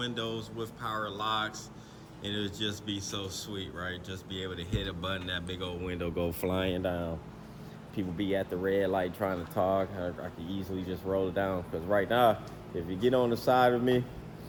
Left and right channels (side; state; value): both; identical; correlation 1.00